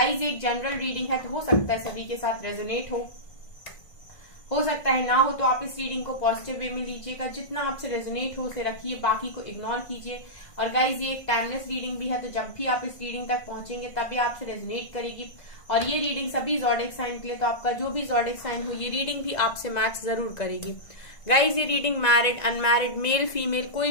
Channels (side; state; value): right; late; 1.5 ms